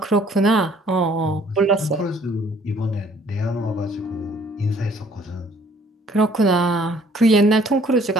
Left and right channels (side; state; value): both; normal; correlation 0.59